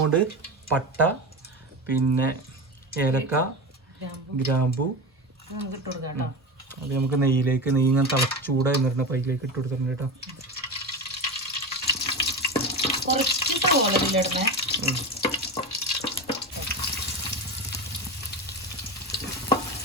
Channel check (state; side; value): normal; both; correlation 0.23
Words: പോണ്ട് പട്ട, പിന്നെ ഏലക്ക, ഗ്രാമ്പു. അത് നമുക്ക് നെയ്യിലേക്ക്, നെയ്യ് ഇങ്ങനെ ചൂടായി നിറഞ്ഞ പൈലേക്ക് ഇട്ട് കൊടുക്കുന്നുണ്ട് കേട്ടോ.